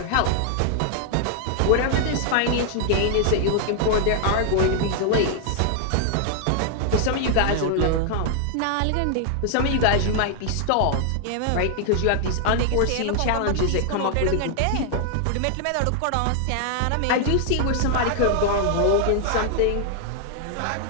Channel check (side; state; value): both; different; correlation 0.00